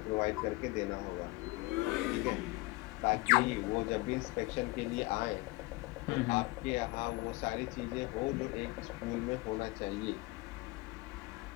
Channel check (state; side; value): quieter; right; 21.5 dB